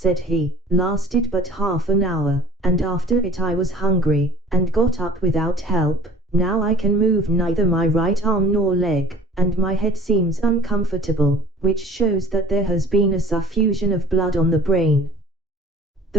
he, lasted but half an hour, and after it I was hungry, and got up without help. Now I can move neither my right arm nor leg, and my head seems uncomfortable, which shows that there has been a suffusion of blood on the brain.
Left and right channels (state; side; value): normal; both; correlation 0.48